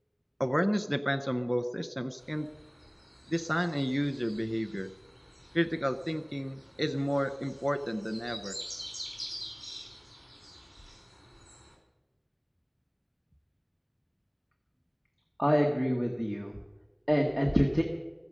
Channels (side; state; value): both; identical; correlation 1.00